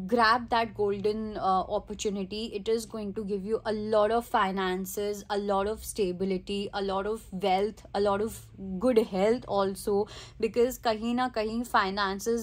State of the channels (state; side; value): identical; both; correlation 1.00